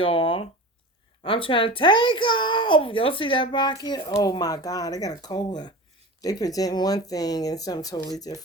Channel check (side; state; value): both; normal; correlation 0.32